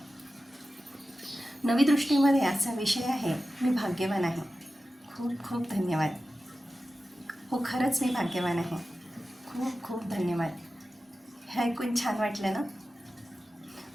नवी दृष्टीमध्ये आजचा विषय आहे, मी भाग्यवान आहे. खूप खूप धन्यवाद. हो, खरंच मी भाग्यवान आहे. खूप खूप धन्यवाद. हे ऐकून छान वाटलं ना?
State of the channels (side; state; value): both; normal; correlation 0.94